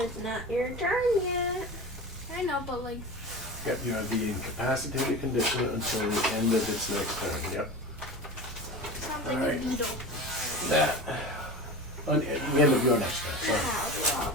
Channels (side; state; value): both; normal; correlation 0.30